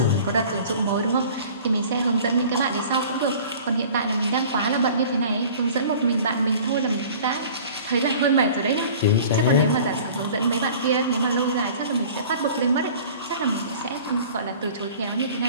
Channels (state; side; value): inverted; both; correlation -0.45